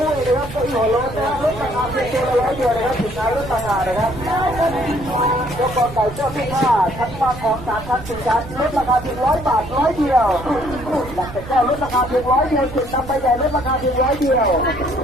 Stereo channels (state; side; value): noise; right; rumble, 13 dB below the sound